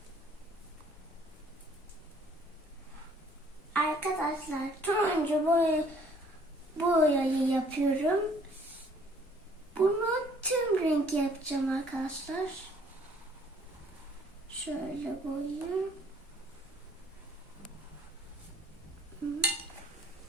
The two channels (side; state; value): both; normal; correlation 0.59